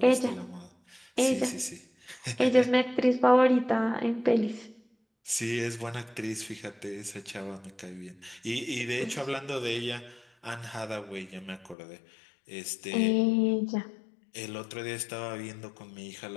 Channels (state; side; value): drops out; right; at 11.8 s